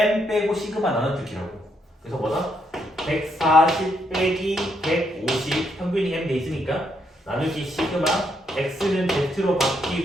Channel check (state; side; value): normal; both; correlation 0.76